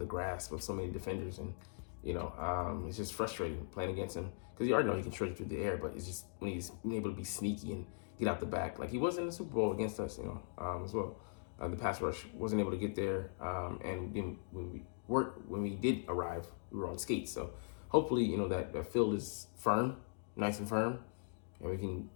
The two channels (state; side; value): silent; right; digital silence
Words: grasp of so many defenders, and it's just frustrating playing against him because you already know he can stretch through the air, but it's just when he's been able to be sneaky and get out the back, like he was in the Super Bowl against us, as well. The pass rush wasn't able to get there, and then when we did arrive, we were on skates. So hopefully, that field is firm, nice and firm, and we can,